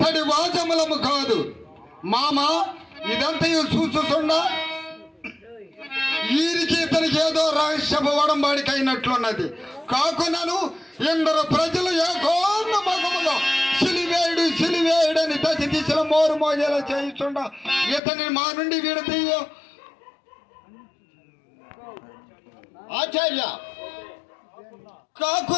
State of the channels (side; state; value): right; drops out; at 18.0 s